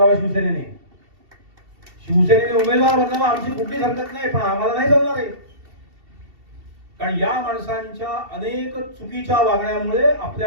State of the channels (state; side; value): late; left; 2.7 ms